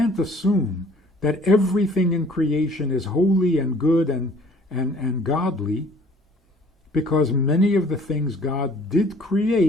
assume that everything in creation is holy and good and godly, because many of the things God did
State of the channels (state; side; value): normal; both; correlation 0.54